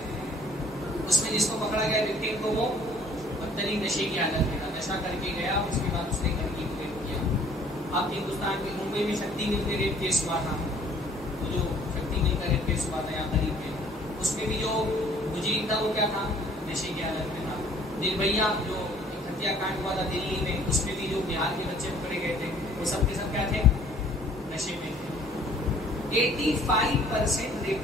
اس میں جس کو پکڑا گیا وکٹم کو وہ بدترین نشے کی حالت میں تھا، نشہ کر کے گیا، اس کے بعد اس نے گھر کی ریپ کیا۔ آپ ہندوستان کے ممبئی میں شکتی مل میں ریپ کیس ہوا تھا، وہ جو شکتی مل کا ریپ کیس ہوا تھا یہاں قریب میں، اس میں بھی جو مجرم تھا وہ کیا تھا؟ نشے کی حالت میں تھا۔ نربھیا جو ہتیا کانڈ ہوا تھا دلی میں، اس میں بھی جو بہار کے بچے پکڑے گئے تھے وہ سب کے سب کیا تھے؟ نشے میں تھے۔ 85%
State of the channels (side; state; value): both; normal; correlation 0.57